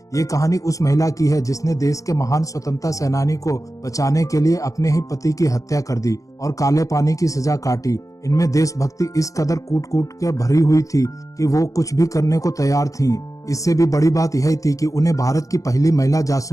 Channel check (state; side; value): late; right; 0.16 ms